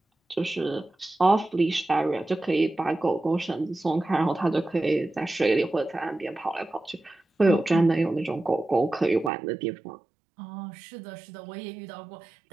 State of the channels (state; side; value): drops out; left; at 9.3 s